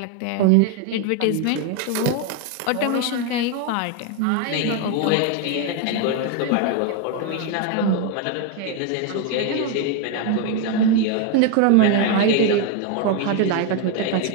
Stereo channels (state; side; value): different; both; correlation 0.02